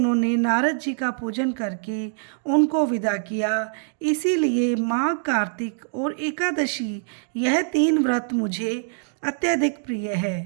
नारद जी का पूजन करके उनको विदा किया। इसीलिए माघ, कार्तिक और एकादशी, यह 3 व्रत मुझे अत्यधिक प्रिय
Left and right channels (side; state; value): left; silent; digital silence